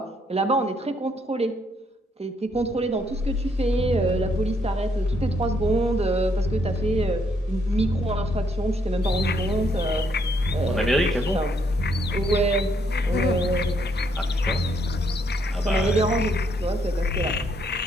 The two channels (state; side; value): normal; both; correlation 0.72